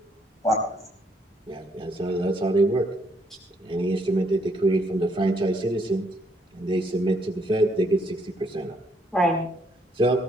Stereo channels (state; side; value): normal; both; correlation 0.71